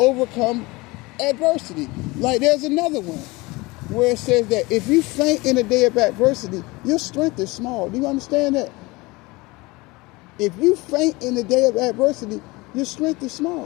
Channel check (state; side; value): quieter; right; 23.2 dB